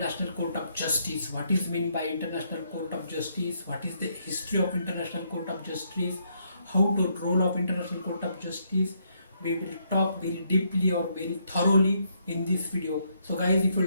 Court of Justice. What is mean by International Court of Justice? What is the history of International Court of Justice? How to role of International Court of Justice? We will talk very deeply or very thoroughly in this video. So guys, if you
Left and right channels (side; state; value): both; inverted; correlation -0.74